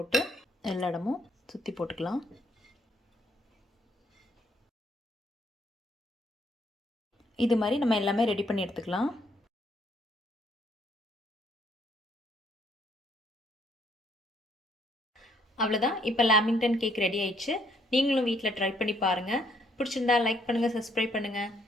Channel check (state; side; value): normal; both; correlation 0.69